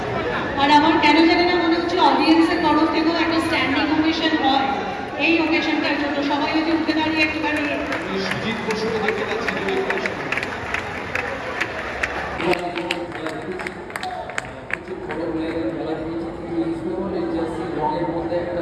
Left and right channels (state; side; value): identical; both; correlation 1.00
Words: আর আমার কেন জানি না মনে হচ্ছে অডিয়েন্সের তরফ থেকেও একটা স্ট্যান্ডিং ওভেশন হয় এই ওকেশনটার জন্য। সবাই যদি উঠে দাঁড়িয়ে একটুখানি সুজিত বসুকে দেখতে পাচ্ছি